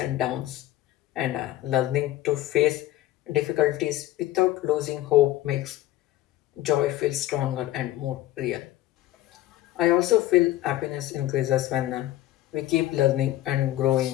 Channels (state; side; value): quieter; right; 15.0 dB